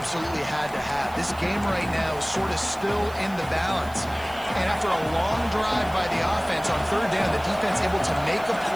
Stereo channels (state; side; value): noise; right; hiss, 21 dB below the sound